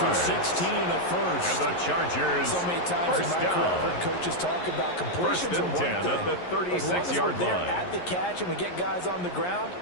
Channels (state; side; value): late; right; 11 ms